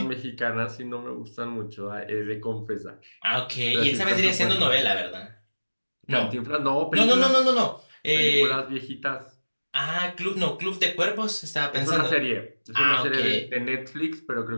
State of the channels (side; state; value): both; inverted; correlation -1.00